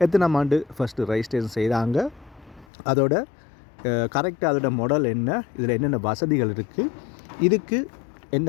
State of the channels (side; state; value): right; drops out; at 2.7 s